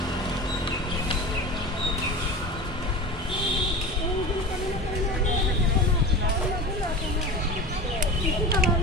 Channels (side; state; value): both; normal; correlation 0.31